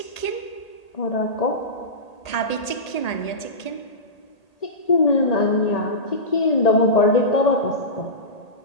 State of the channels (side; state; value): right; late; 1.8 ms